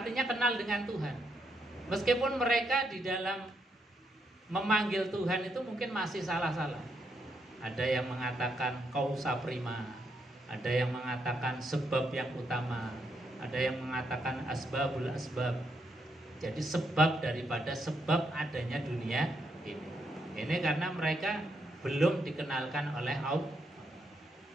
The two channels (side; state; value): both; normal; correlation 0.78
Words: kenal dengan Tuhan. Meskipun mereka di dalam memanggil Tuhan itu mungkin masih salah-salah. Ada yang mengatakan kausa prima, ada yang mengatakan sebab yang utama, ada yang mengatakan asbabul asbab. Jadi sebab daripada sebab adanya dunia ini. Ini karena mereka belum dikenalkan oleh Allah.